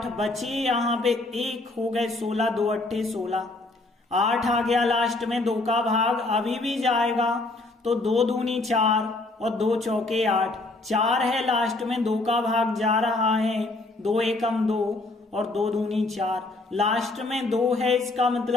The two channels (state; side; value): quieter; right; 3.0 dB